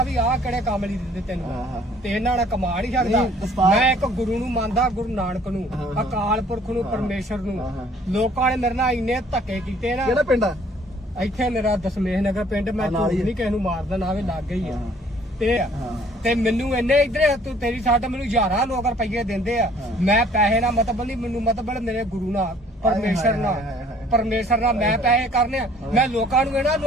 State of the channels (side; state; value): both; normal; correlation 0.57